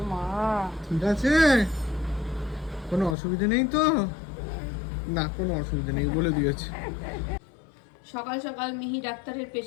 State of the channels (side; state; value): right; drops out; at 3.2 s